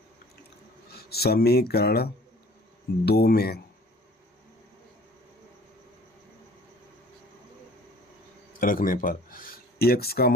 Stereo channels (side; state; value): both; normal; correlation 0.51